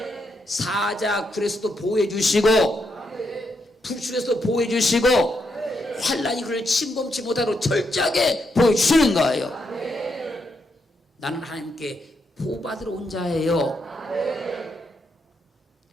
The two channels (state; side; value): normal; both; correlation 0.80